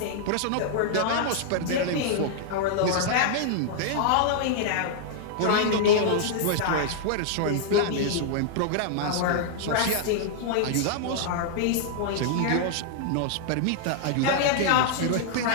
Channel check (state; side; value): different; both; correlation -0.01